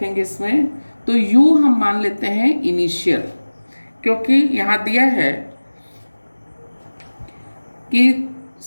इसमें। तो u हम मान लेते हैं इनिशियल, क्योंकि यहाँ दिया है कि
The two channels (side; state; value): both; inverted; correlation -1.00